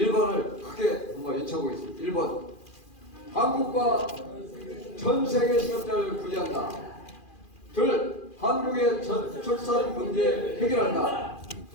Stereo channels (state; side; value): late; right; 2.4 ms